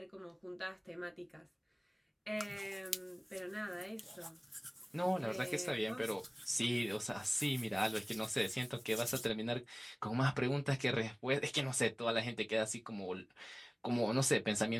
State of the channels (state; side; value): identical; both; correlation 1.00